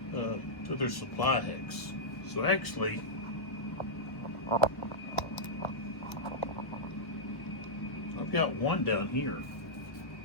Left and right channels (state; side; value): late; right; 1.3 ms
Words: to their supply hex. So actually, I've got one down here.